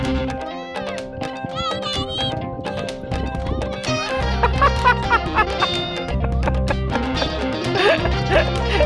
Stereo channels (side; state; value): both; identical; correlation 1.00